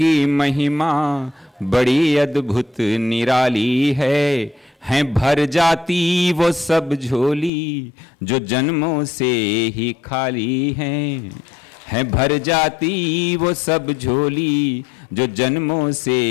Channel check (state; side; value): drops out; right; at 7.5 s